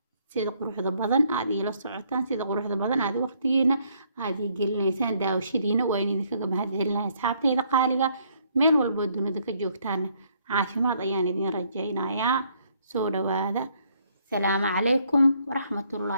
sida quruxda badan aad ila socotaan sida quruxda badan aad waqtigiina aad gelinaysaan daawashadiina waan idinkaga mahadcelinayaa asxaabteyda qaaliga meel walba dunida ka joogtaan caafimaad ayaan idin rajaynayaa soo dhawaada salaamu calaykum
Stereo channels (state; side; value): inverted; both; correlation -0.68